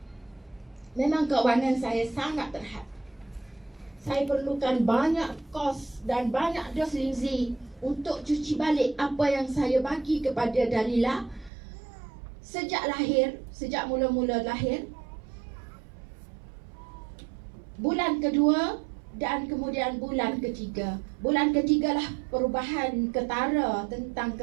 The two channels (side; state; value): left; drops out; at 11.5 s